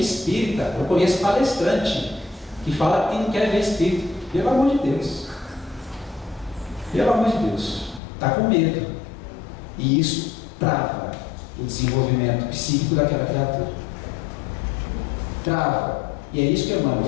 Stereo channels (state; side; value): drops out; right; at 8.0 s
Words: espírita, eu conheço palestrante que fala que não quer ver espírito. Pelo amor de Deus. Pelo amor de Deus. Está com medo. E isso trava o desenvolvimento psíquico daquela criatura. Trava. E é isso que Emmanuel